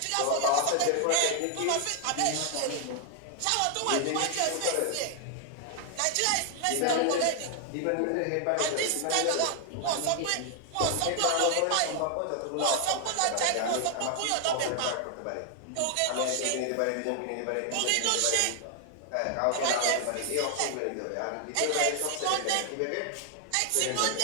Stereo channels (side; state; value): both; different; correlation 0.00